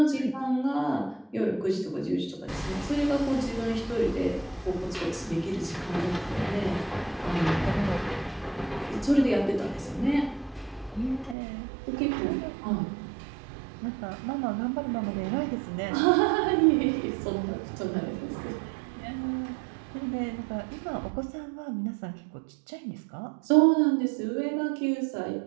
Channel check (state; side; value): drops out; left; at 11.4 s